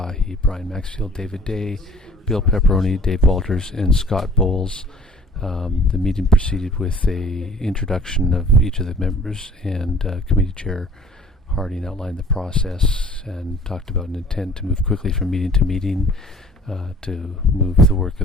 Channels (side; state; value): both; normal; correlation 0.50